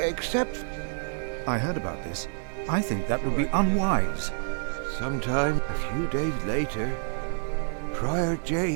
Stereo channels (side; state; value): left; silent; digital silence